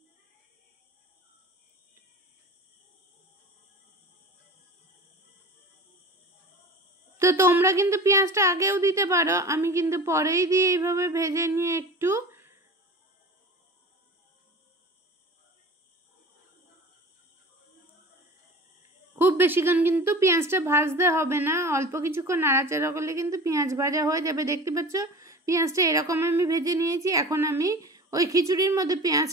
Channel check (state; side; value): normal; both; correlation 0.37